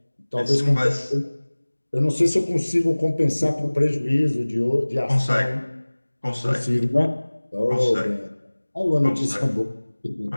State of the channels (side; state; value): both; inverted; correlation -1.00